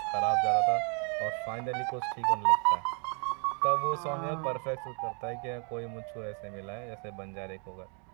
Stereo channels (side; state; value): left; quieter; 36.6 dB